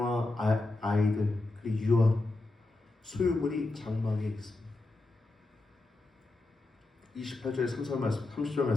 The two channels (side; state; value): right; quieter; 3.0 dB